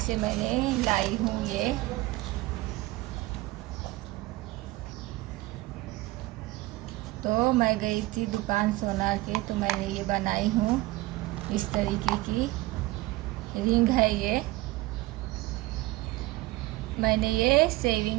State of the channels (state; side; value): quieter; left; 19.6 dB